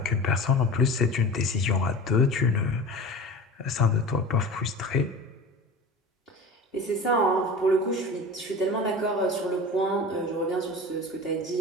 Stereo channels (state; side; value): normal; both; correlation 0.34